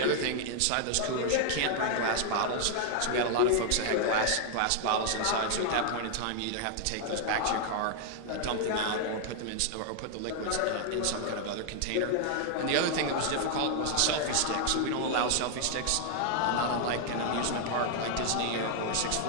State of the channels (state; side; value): different; both; correlation 0.00